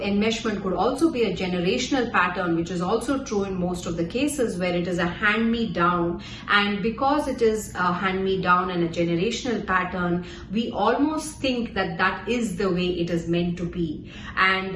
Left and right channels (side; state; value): both; identical; correlation 1.00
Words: could also be a generational pattern, which is also true in most of the cases where it is a hand-me-down. And because it is a hand-me-down and a generational pattern, we almost think that that is the way it is meant to be.